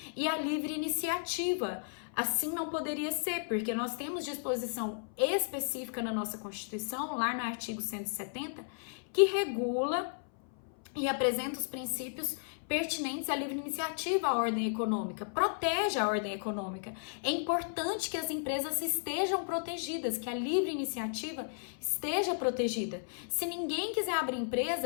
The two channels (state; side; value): silent; right; 55 dB below the other